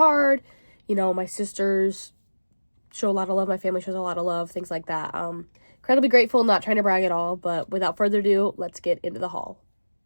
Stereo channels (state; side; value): inverted; both; correlation -1.00